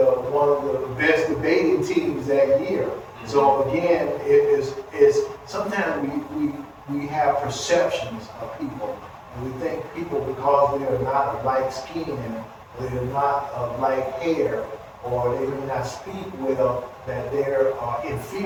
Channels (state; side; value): identical; both; correlation 1.00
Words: one of the best debating teams that year. Mm-hmm. So again, it's sometimes we have perceptions of people, and we think people, because they're not of like skin, they're not of like hair, or they may not speak well, that they're